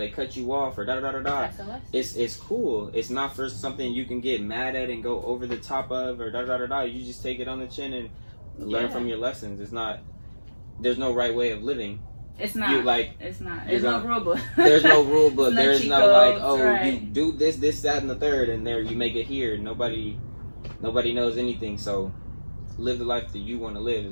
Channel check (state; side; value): inverted; both; correlation -1.00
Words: cut you off, or da da da da da, it's cool. It's not for something you can get mad at and go over the top of, or da da da da. You just take it on the chin and learn from your lessons. It's not. There's no right way of living. It's not. It's not. There's no rule book. There's no rule book. There's no like, oh, right. You do this, that, and the third, and there you make it here. Nobody knows anything. So live the life that you want to live